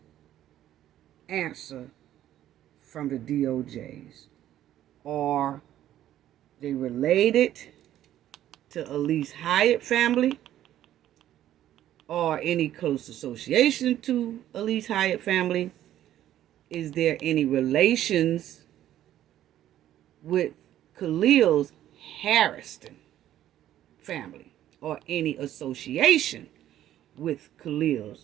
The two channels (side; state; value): left; quieter; 12.3 dB